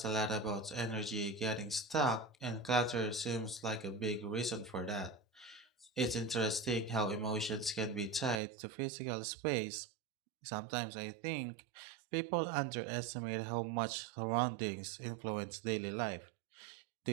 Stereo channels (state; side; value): drops out; left; at 8.4 s